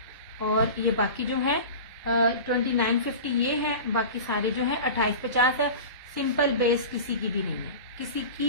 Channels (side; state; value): both; inverted; correlation -0.32